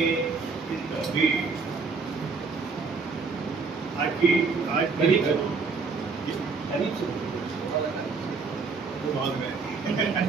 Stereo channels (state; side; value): quieter; left; 4.7 dB